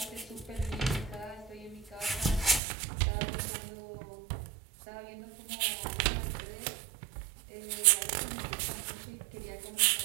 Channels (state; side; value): drops out; left; at 2.6 s